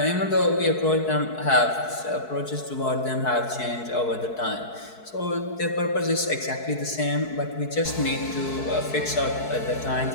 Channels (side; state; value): right; late; 4.6 ms